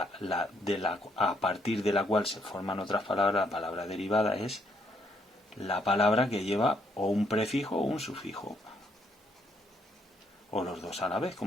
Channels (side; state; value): both; normal; correlation 0.72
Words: a partir de la cual se forman otras palabras, la palabra derivada es la palabra que lleva o un prefijo o un sufijo, o los dos a la vez,